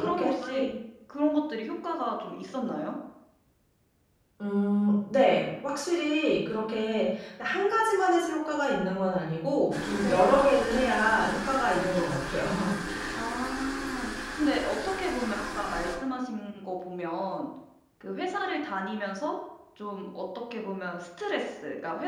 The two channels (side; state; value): both; identical; correlation 1.00